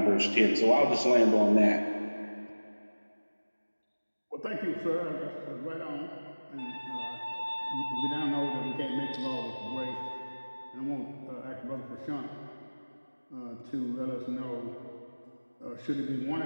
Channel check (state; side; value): inverted; both; correlation -1.00